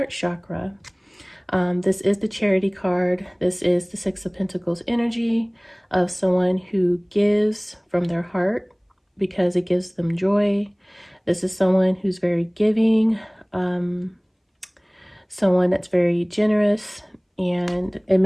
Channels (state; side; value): identical; both; correlation 1.00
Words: chakra. This is the Charity card. This is the Six of Pentacles energy of someone who gives from their heart because it gives them joy. This is someone who's very giving, someone that's very generous, and it